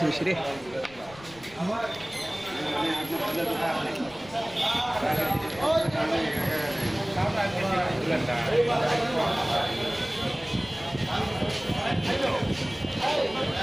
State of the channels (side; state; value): left; noise; rumble, 21 dB below the sound